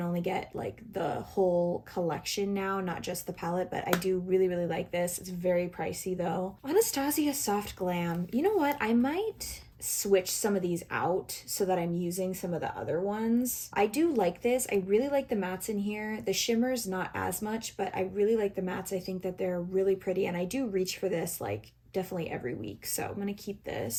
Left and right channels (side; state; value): both; identical; correlation 1.00